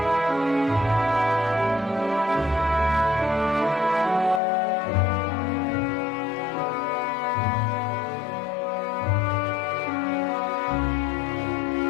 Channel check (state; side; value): drops out; right; at 4.4 s